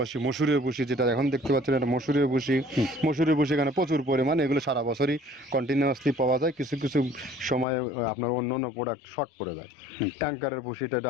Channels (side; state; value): right; drops out; at 7.7 s